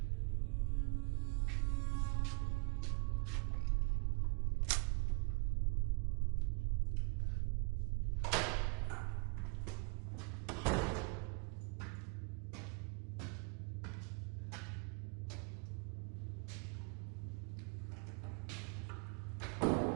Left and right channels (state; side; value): quieter; left; 32.1 dB